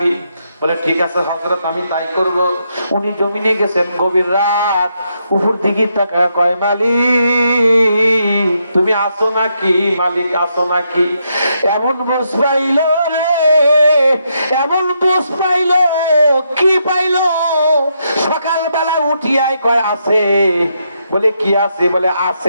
বলে ঠিক আছে হযরত, আমি তাই করব। উনি জমিনে গেছেন, গভীর রাত, উপর দিকে তাকায় কয়, মালিক তুমি আসো নাকি, মালিক আসো নাকি? এমন বুঝ পাইল রে, এমন বুঝ পাইল, কি পাইল? সকালবেলা উঠিয়াই কয় আছে, বলে কি আছে? বলে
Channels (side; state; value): both; inverted; correlation -0.79